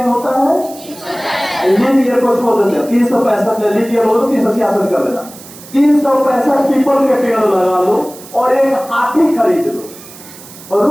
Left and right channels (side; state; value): right; noise; hiss, 18 dB below the sound